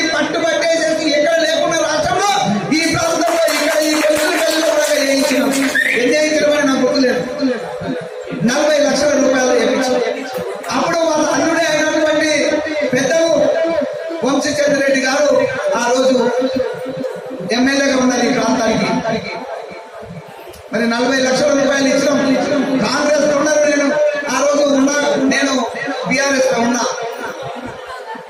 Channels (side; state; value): both; identical; correlation 1.00